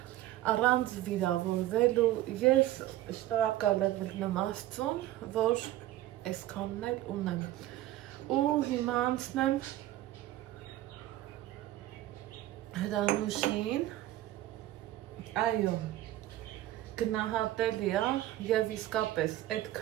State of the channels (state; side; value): quieter; left; 14.7 dB